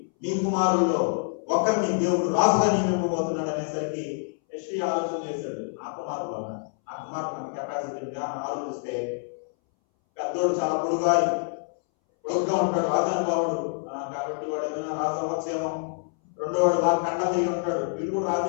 మీ కుమారుల్లో ఒకరిని దేవుడు రాజుగా నియమింపబోతున్నాడు అనేసరికి యెష్షయి ఆలోచన చేశాడు. ఆ కుమారుడు కెపాసిటీ ఆలోచిస్తే పెద్దోడు చాలా పొడుగ్గా ఉంటాడు, రాజానుభావుడు కాబట్టి వాడు ఏమైనా రాజు అవ్వచ్చేమో. రెండోవాడు బాగా కండ తిరిగి ఉంటాడు, వీడు కూడా రాజు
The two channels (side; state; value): right; silent; 61 dB below the other